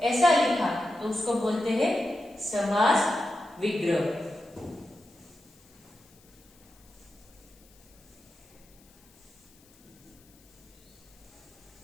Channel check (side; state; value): left; noise; hiss, 28 dB below the sound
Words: ऐसा लिखा तो उसको बोलते हैं समास विग्रह।